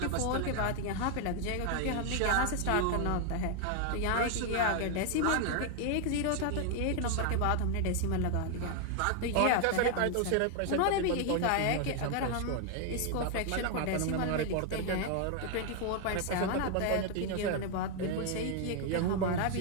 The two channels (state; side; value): different; both; correlation 0.00